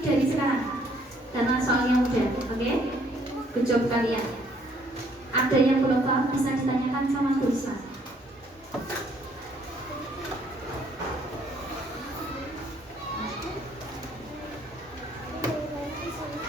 sekarang. Karena soalnya udah, oke? Good job kalian. Ada yang belum paham bisa ditanyakan sama Bu Risma.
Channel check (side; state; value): both; normal; correlation 0.65